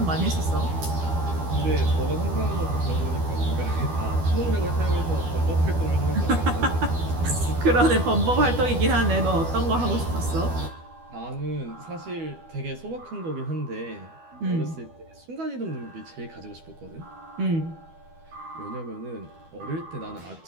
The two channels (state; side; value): late; left; 12 ms